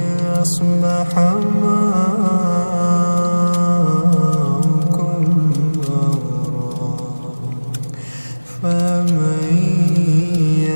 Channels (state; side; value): inverted; both; correlation -1.00